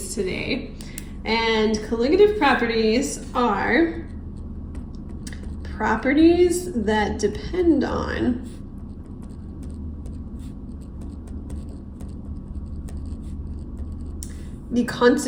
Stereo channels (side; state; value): both; identical; correlation 1.00